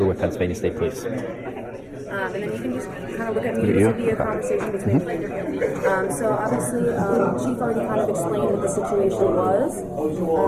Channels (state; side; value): identical; both; correlation 1.00